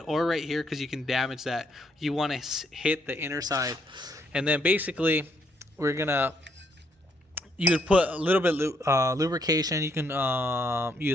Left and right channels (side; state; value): both; normal; correlation 0.72